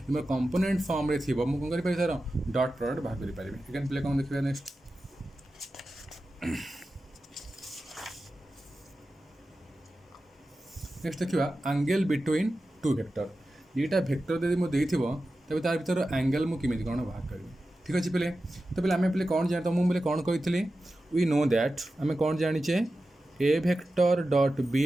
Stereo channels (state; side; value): normal; both; correlation 0.93